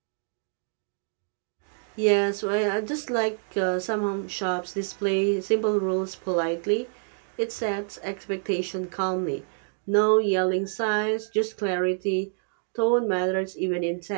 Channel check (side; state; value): left; silent; 60 dB below the other